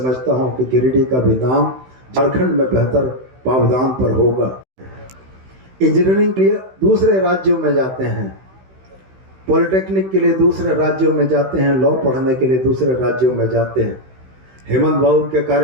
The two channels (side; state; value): left; late; 16 ms